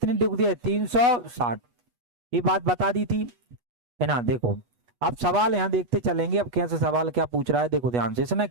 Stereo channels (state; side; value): late; left; 8.2 ms